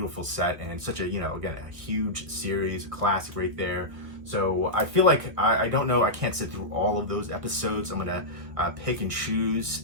set and such a, again, a huge series, a classic right there. So I feel like, I don't know, I can't sit through all of those episodes. I'm going to pick and choose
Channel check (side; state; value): left; late; 1.6 ms